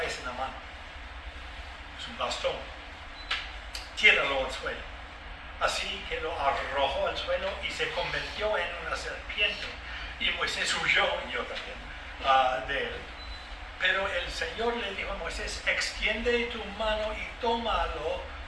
en la mano? Es un bastón. Tíralo al suelo. así que lo arrojó al suelo y se convirtió en una serpiente. Y Moisés huyó, y yo también, de él. Pero el Señor le dijo a Moisés, extiende tu mano y tómalo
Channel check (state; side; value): identical; both; correlation 1.00